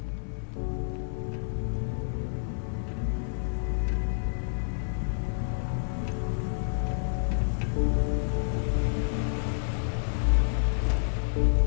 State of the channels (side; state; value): right; silent; 55 dB below the other